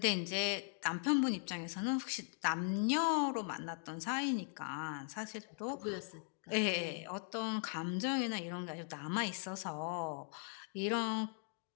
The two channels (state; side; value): silent; right; 51 dB below the other